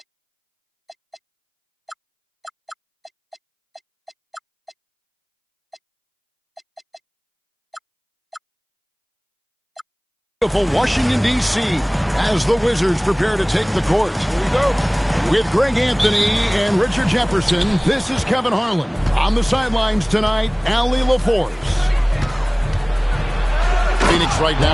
Washington, D.C. as the Wizards prepare to take the court. Here we go. With Greg Anthony and Richard Jefferson, this is Kevin Harlan. On the sidelines tonight, Allie LaForce. Phoenix right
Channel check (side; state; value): both; identical; correlation 1.00